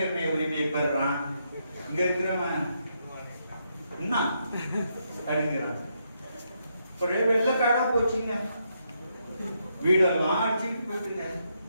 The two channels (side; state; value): both; inverted; correlation -0.79